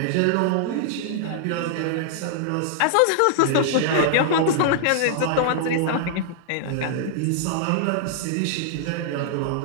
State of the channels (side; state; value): both; different; correlation -0.01